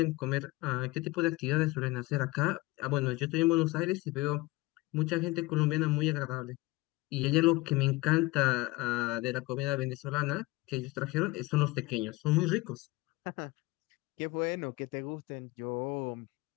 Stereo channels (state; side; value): quieter; right; 21.2 dB